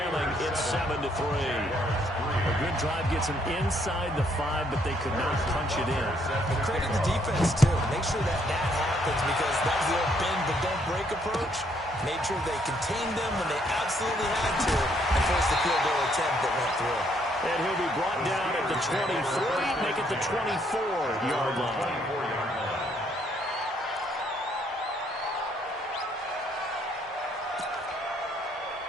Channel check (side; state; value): both; normal; correlation 0.69